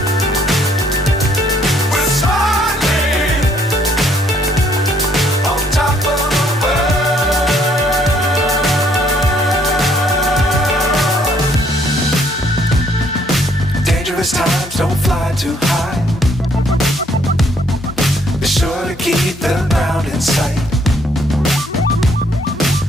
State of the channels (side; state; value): both; normal; correlation 0.66